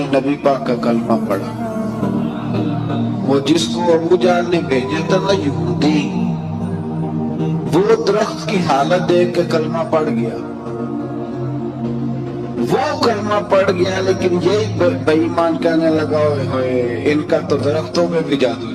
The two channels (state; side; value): identical; both; correlation 1.00